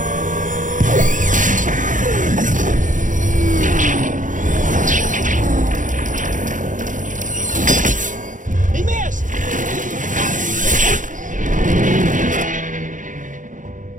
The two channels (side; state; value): left; late; 0.37 ms